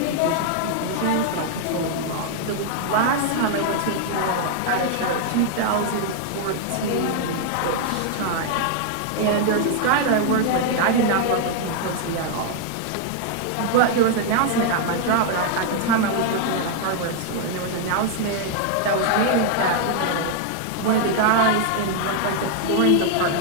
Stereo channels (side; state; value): both; different; correlation 0.00